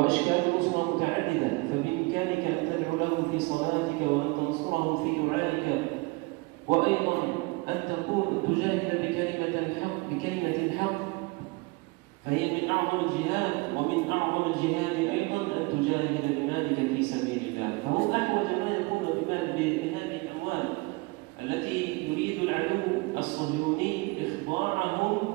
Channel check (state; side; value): quieter; left; 25.9 dB